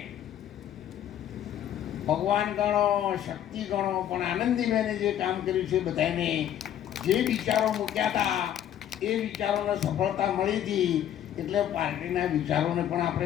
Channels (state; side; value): quieter; right; 10.7 dB